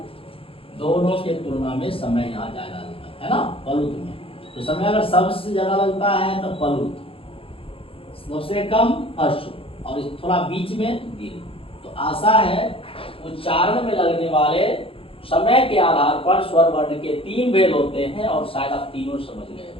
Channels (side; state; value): right; late; 0.27 ms